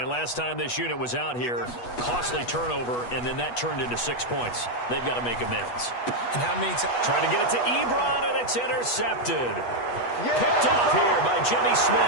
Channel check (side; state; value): right; late; 8.2 ms